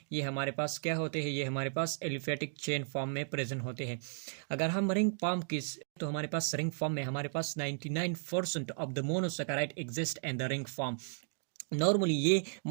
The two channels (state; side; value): silent; left; digital silence